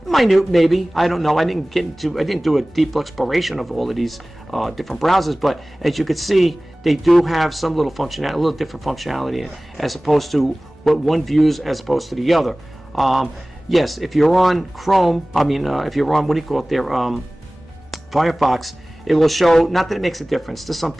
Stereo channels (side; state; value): both; normal; correlation 0.98